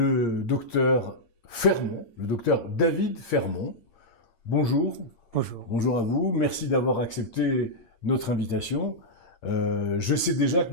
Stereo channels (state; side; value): late; right; 8.7 ms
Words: docteur Fermont, le docteur David Fermont. Bonjour, Bonjour. bonjour à vous, merci d'avoir accepté notre invitation. Je sais déjà